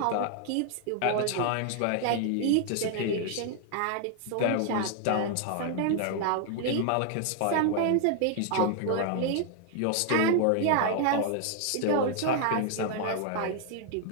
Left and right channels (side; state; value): both; different; correlation 0.00